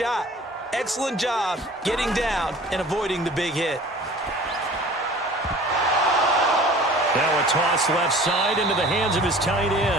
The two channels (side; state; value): both; normal; correlation 0.45